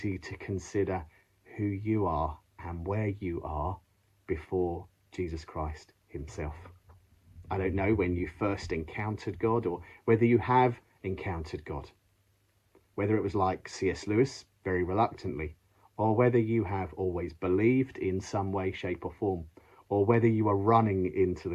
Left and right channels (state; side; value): identical; both; correlation 1.00